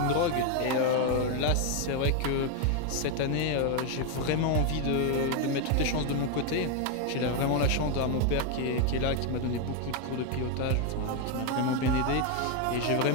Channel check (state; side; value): different; both; correlation 0.01